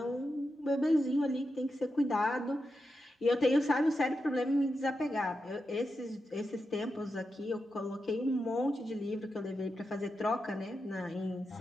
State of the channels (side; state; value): both; normal; correlation 0.88